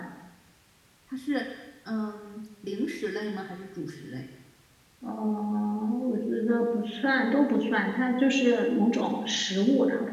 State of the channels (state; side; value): identical; both; correlation 1.00